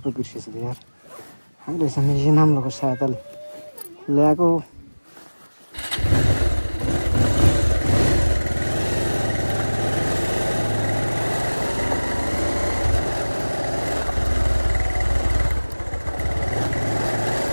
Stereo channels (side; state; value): both; inverted; correlation -1.00